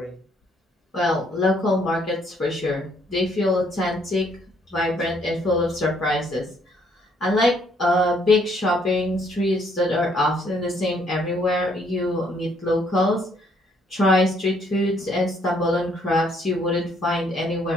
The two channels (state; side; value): normal; both; correlation 0.67